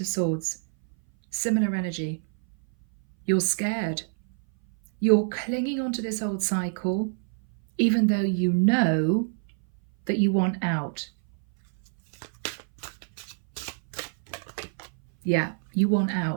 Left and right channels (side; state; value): left; silent; 59 dB below the other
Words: Swords. Similar energy. You're scared. You're clinging onto this old cycle, even though you know that you want out. Yeah, you want